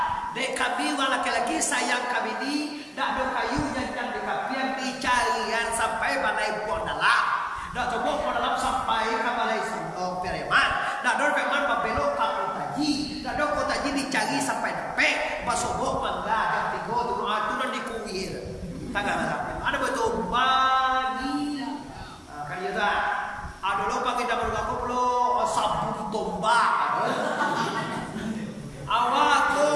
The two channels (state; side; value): identical; both; correlation 1.00